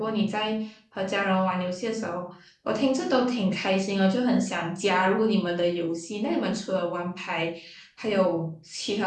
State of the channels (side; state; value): both; identical; correlation 1.00